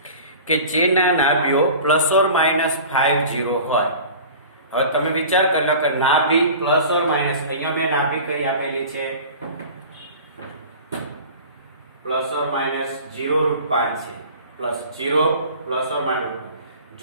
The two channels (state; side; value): inverted; both; correlation -0.40